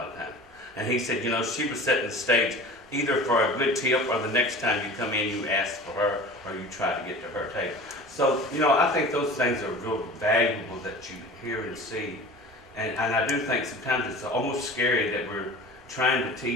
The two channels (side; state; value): both; normal; correlation 0.38